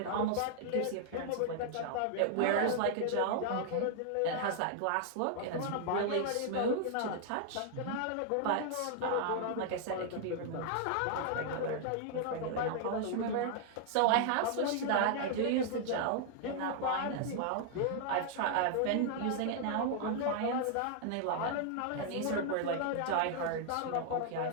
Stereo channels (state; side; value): different; both; correlation 0.00